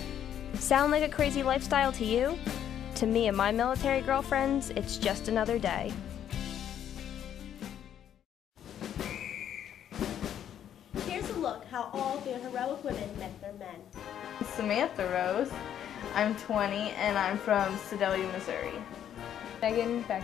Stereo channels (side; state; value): right; quieter; 9.9 dB